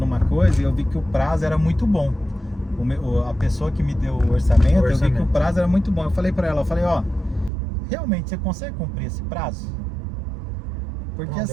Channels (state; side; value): drops out; left; at 7.5 s